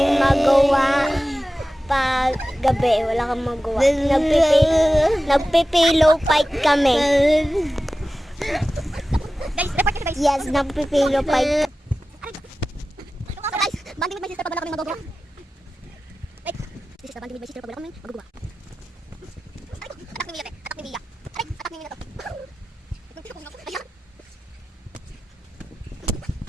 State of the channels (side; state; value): both; normal; correlation 0.95